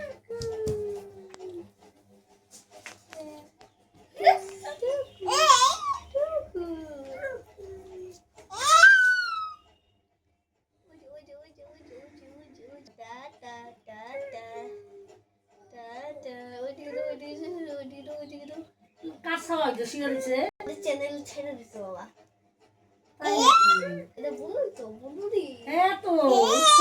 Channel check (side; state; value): both; identical; correlation 1.00